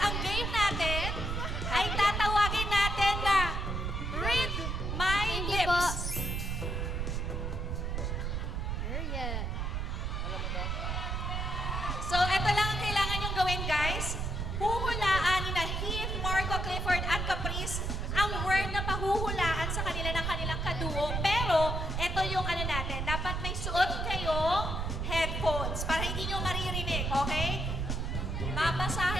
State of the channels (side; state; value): right; noise; rumble, 1 dB below the sound